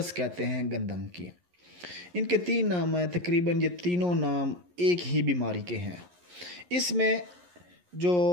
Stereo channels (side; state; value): left; late; 11 ms